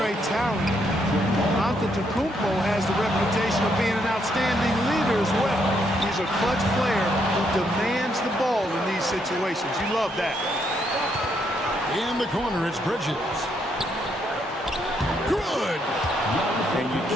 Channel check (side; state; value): both; normal; correlation 0.75